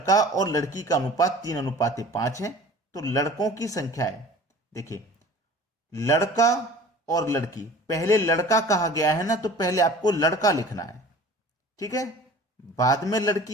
और लड़की का अनुपात 3:5 है। तो लड़कों की संख्या है, देखिए लड़का और लड़की, पहले लड़का कहा गया है ना, तो पहले आपको लड़का लिखना है, ठीक है। बाद में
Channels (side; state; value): both; normal; correlation 0.43